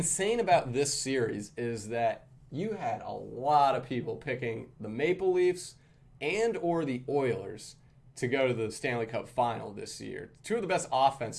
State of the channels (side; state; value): both; identical; correlation 1.00